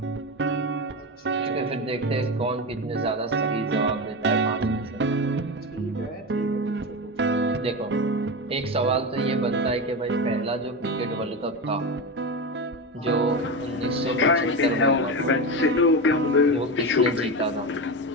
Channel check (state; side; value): normal; both; correlation 0.19